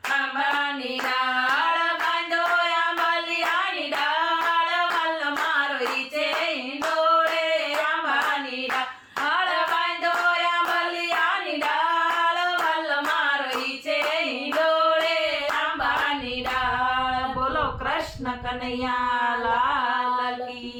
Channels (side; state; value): both; identical; correlation 1.00